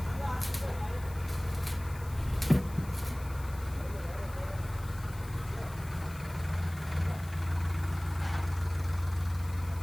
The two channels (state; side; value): noise; left; hiss, 19 dB below the sound